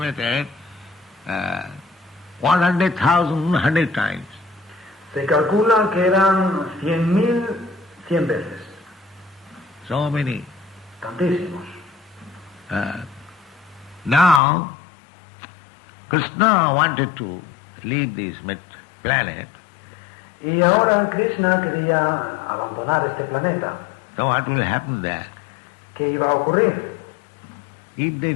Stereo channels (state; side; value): drops out; right; at 14.4 s